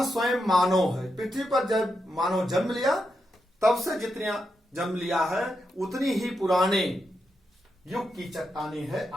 स्वयं मानव है। पृथ्वी पर जब मानव जन्म लिया तब से जितनी जन्म लिया है उतनी ही पुराने युग की चट्टाने है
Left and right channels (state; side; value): normal; both; correlation 0.85